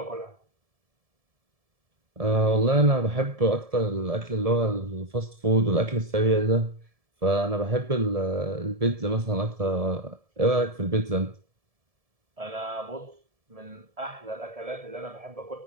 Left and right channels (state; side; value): late; left; 1.7 ms